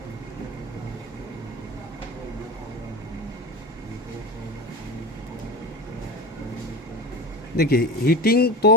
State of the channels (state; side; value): normal; both; correlation 0.25